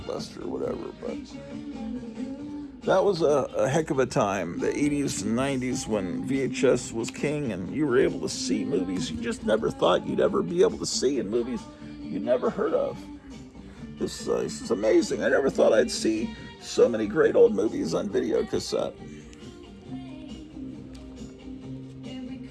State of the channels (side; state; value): both; identical; correlation 1.00